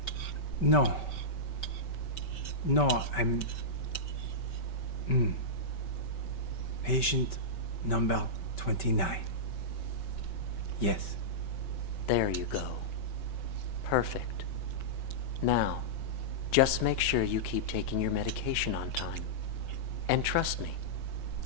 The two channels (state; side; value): late; right; 5.2 ms